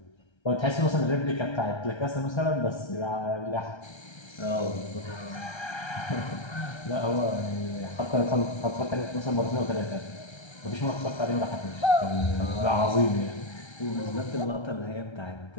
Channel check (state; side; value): late; right; 1.3 ms